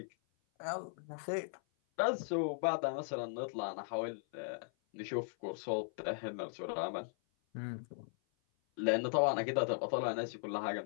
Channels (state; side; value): silent; right; 52 dB below the other